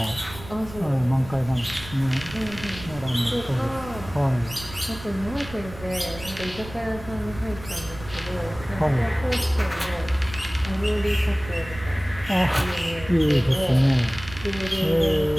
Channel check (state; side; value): noise; right; rumble, 15 dB below the sound